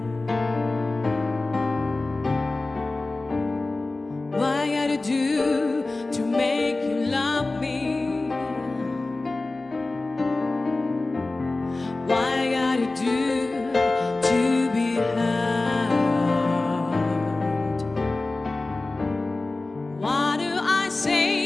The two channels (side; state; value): right; quieter; 3.2 dB